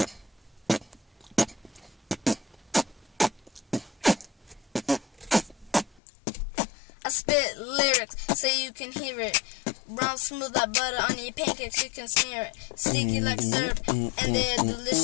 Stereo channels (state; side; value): drops out; right; at 6.0 s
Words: I spit lyrics so you can hear it. Brown smooth like butter on your pancakes, you can smear it. Sticky like syrup and they're